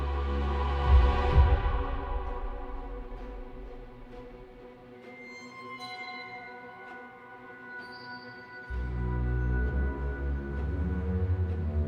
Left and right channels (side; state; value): both; identical; correlation 1.00